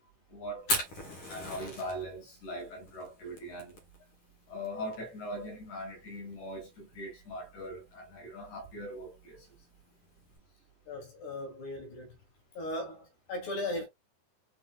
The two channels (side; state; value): right; late; 10 ms